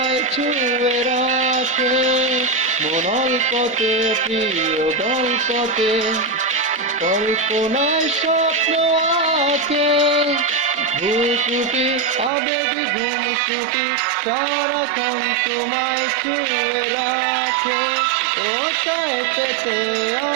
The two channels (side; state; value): left; drops out; at 12.3 s